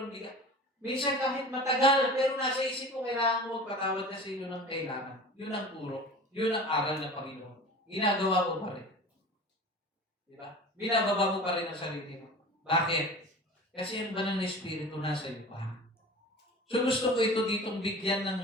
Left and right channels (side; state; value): both; normal; correlation 0.37